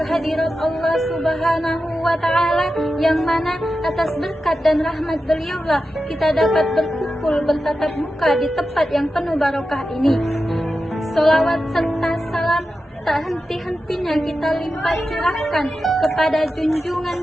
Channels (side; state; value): both; normal; correlation 0.91